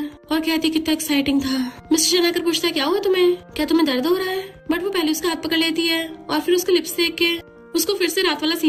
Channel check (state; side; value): identical; both; correlation 1.00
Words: और कहती कितना एक्साइटिंग था। मिस्टर चैन आकर पूछता है क्या हुआ तुम्हें, क्या तुम्हें दर्द हो रहा है। बट वो पहले उसका हाथ पकड़ लेती है और फिर उसके लिप्स देख के उसको फिर से रात वाला